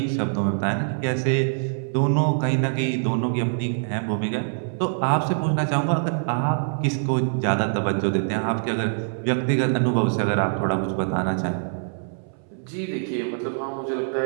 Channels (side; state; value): left; silent; 62 dB below the other